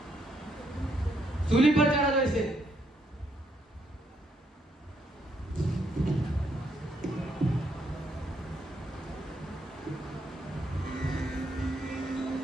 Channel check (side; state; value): both; normal; correlation 0.74